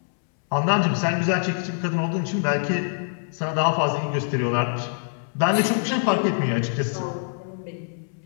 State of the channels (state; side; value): silent; right; 62 dB below the other